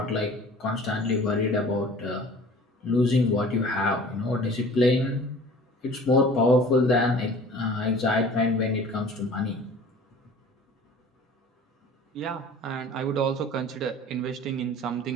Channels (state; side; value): normal; both; correlation 0.45